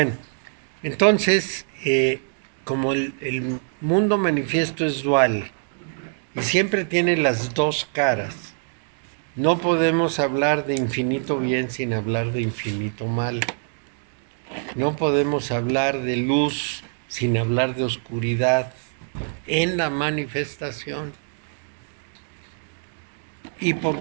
entonces, como el mundo manifiesto es dual y siempre tiene las dos caras, no podemos hablar de infinito bien sin hablar de infinito mal. No podemos hablar de luz sin hablar de oscuridad en la manifestación. ¿Y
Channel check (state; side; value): silent; left; digital silence